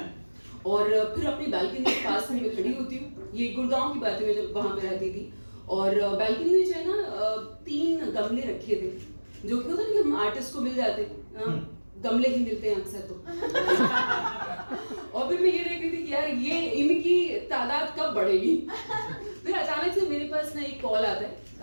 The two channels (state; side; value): inverted; both; correlation -1.00